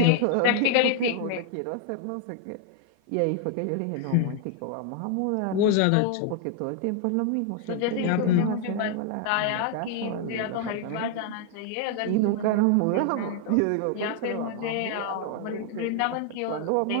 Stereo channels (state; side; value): different; both; correlation 0.00